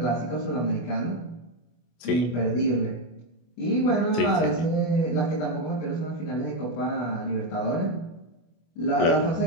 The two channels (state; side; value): late; right; 25 ms